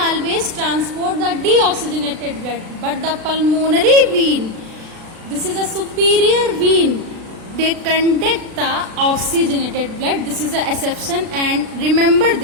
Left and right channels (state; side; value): late; left; 36 ms